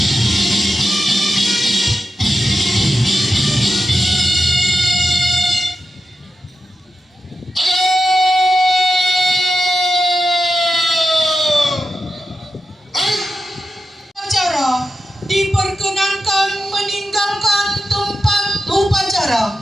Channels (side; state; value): both; normal; correlation 0.90